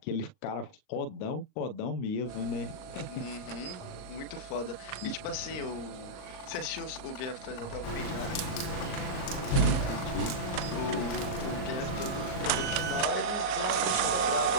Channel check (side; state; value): right; late; 38 ms